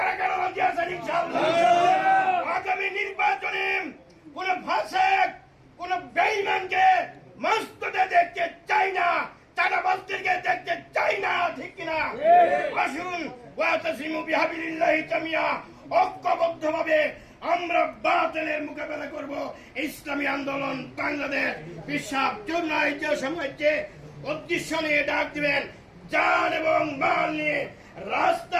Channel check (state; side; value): identical; both; correlation 1.00